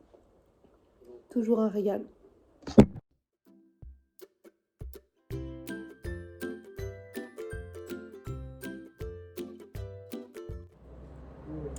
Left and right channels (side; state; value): both; identical; correlation 1.00